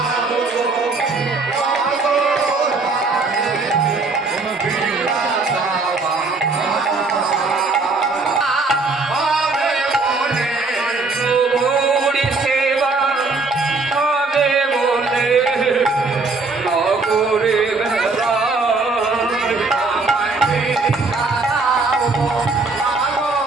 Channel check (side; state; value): left; quieter; 3.8 dB